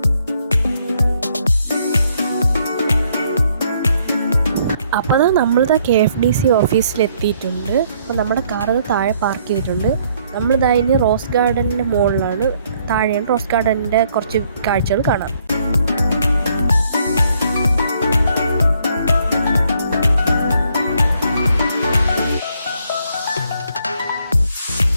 അപ്പോൾ നമ്മളിതാ KFDC ഓഫീസിലെത്തിയിട്ടുണ്ട്. അപ്പോൾ നമ്മുടെ കാറ് താഴെ പാർക്ക് ചെയ്തിട്ടുണ്ട്. നമ്മളിതാ റോസ് ഗാർഡൻ്റെ മുകളിലാണ്, താഴെയാണ് റോസ് ഗാർഡൻ്റെ കുറച്ച് കാഴ്ചകൾ കാണാം.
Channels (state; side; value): inverted; both; correlation -0.68